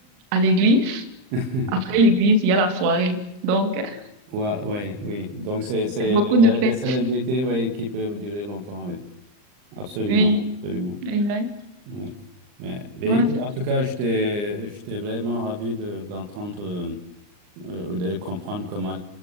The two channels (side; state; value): left; late; 39 ms